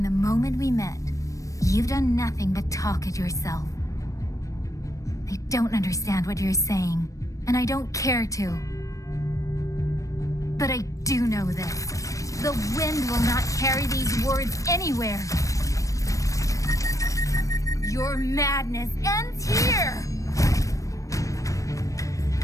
the moment we met, you've done nothing but talk at yourself. I don't understand what you're saying, and I don't care to. But I do know this. The wind will not carry these words anywhere. Your madness ends here!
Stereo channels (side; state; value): right; late; 0.16 ms